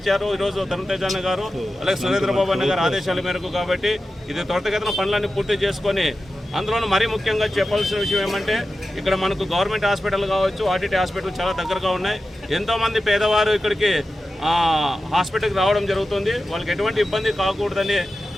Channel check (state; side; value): normal; both; correlation 0.93